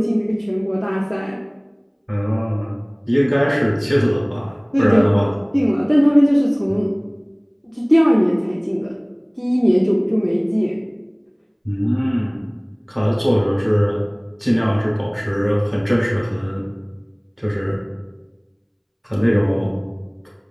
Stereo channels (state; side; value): identical; both; correlation 1.00